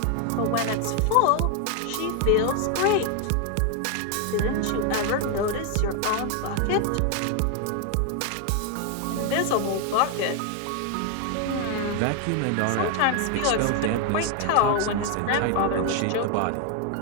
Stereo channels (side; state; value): both; different; correlation 0.01